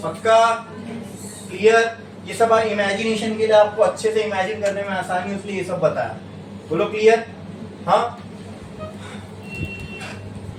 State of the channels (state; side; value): identical; both; correlation 1.00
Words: पक्का क्लियर? ये सब इमेजिनेशन के लिए, आपको अच्छे से इमेजिन करने में आसानी, इसलिए ये सब बताया। बोलो क्लियर? हाँ।